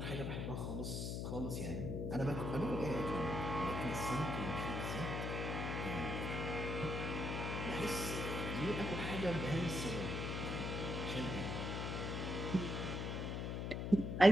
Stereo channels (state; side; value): noise; left; hum, 2 dB below the sound